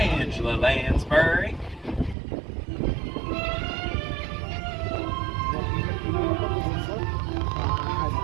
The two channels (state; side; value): drops out; left; at 2.1 s